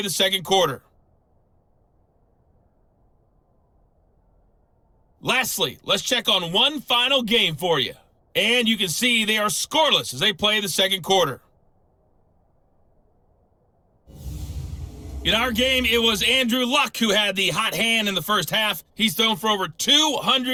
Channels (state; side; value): identical; both; correlation 1.00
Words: the second quarter. Lastly, let's check on one final game for you. And you can see they are scoreless as they play the second quarter. In our game, it was Andrew Luck who had the hot hand in the first half. He's thrown for over